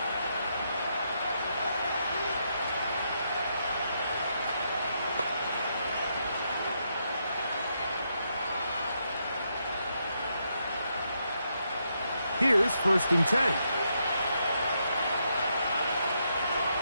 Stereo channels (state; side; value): inverted; both; correlation -0.79